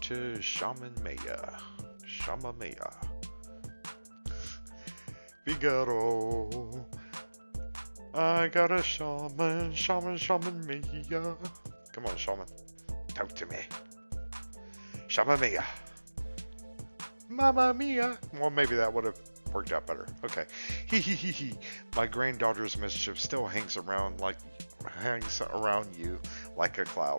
to Shaman Maya. Shaman Maya. Figaro. I got a shaman, shaman Maya. Come on, shaman. Talk to me. Shaman Maya. Mamma mia. Well, maybe that would have worked out better. Okay. Hee hee hee hee. My granddaughter's mischief still hangs around you like a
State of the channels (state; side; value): inverted; both; correlation -1.00